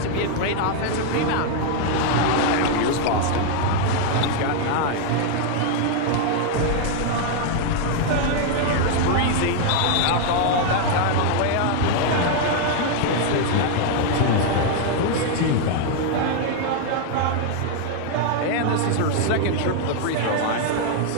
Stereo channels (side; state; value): both; different; correlation 0.00